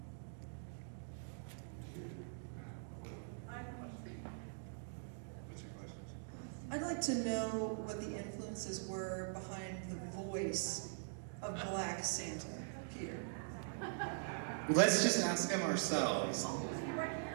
What's your question? I'd like to know what the influences were behind the voice of Black Santa, Peter. Let's just ask him ourselves.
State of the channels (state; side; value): silent; left; digital silence